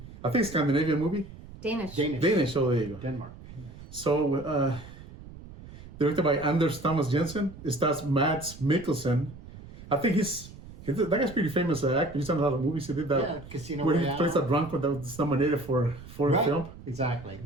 I think, Scandinavian movie. Danish. Oh, there you go. Denmark. So, directed by Anders Thomas Jensen. It stars Mads Mikkelsen. I think that guy's pretty famous actor. He's done a lot of movies. He did that. Yeah, Casino where Royale. he plays that drunk that was nominated for a film. Exactly,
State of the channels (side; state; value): right; noise; rumble, 16 dB below the sound